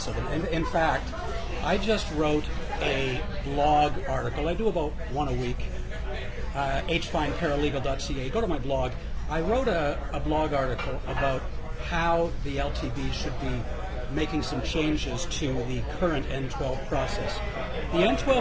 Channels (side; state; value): both; identical; correlation 1.00